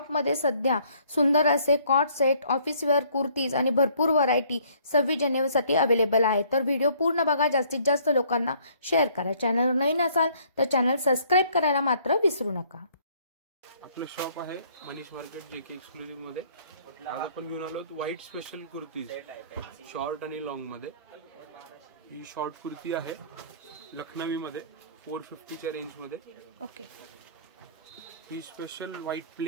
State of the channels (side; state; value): both; inverted; correlation -0.61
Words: सध्या सुंदर असे cot set, office wear kurtis आणि भरपूर व्हरायटी 26 जानेवारीसाठी अवेलेबल आहे। तर व्हिडिओ पूर्ण बघा, जास्तीत जास्त लोकांना शेअर करा। चॅनलवर नवीन असाल तर चॅनल सबस्क्राइब करायला मात्र विसरू नका। आपलं शॉप आहे मनीष मार्केट JK एक्सक्लुझिव्ह मध्ये। आज आपण घेऊन आलो व्हाईट स्पेशल कुर्तीज, शॉर्ट आणि लॉंग मध्ये। ही शॉर्ट कुर्ती आहे लखनवी मध्ये 450 च्या रेंज मध्ये। ओके, ही स्पेशल व्हाईट